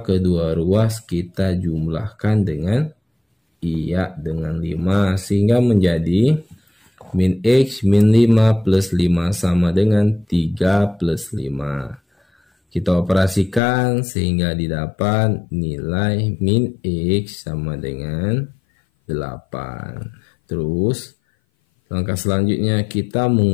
kedua ruas kita jumlahkan dengan iya dengan 5 sehingga menjadi min X min 5 plus 5 sama dengan 3 plus 5. Kita operasikan sehingga didapat nilai min X sama dengan 8. Terus langkah selanjutnya kita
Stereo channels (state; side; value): drops out; right; at 13.6 s